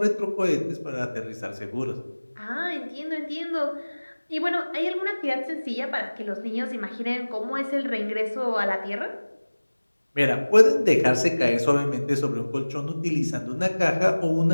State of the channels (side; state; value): both; inverted; correlation -1.00